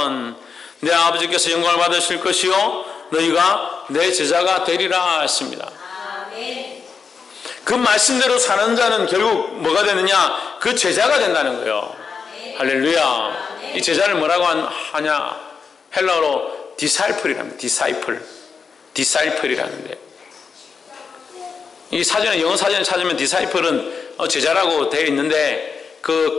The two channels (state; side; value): quieter; right; 5.6 dB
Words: 내 아버지께서 영광을 받으실 것이요 너희가 내 제자가 되리라 했습니다. 그 말씀대로 사는 자는 결국 뭐가 되느냐? 그 제자가 된다는 거예요. 할렐루야. 이 제자를 뭐라고 하냐? 헬라어로 디사이플이랍니다. 디사이플이라는데 이 사전에, 영어 사전에 찾으면 디사이플은 제자라고 되어 있는데